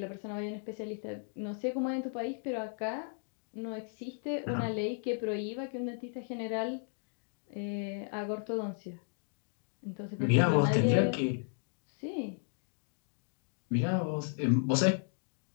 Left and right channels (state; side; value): silent; right; 55 dB below the other